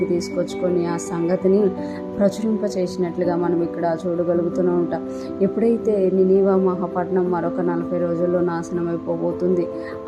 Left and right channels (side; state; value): both; identical; correlation 1.00